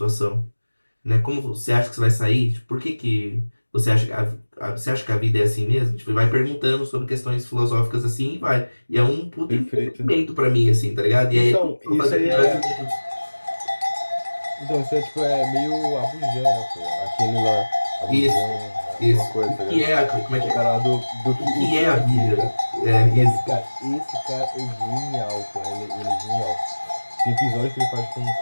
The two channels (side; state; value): both; inverted; correlation -1.00